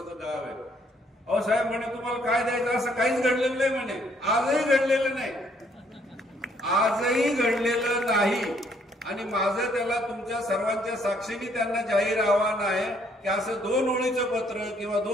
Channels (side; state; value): both; normal; correlation 0.67